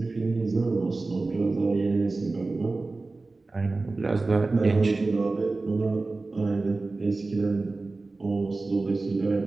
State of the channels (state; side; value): quieter; left; 3.5 dB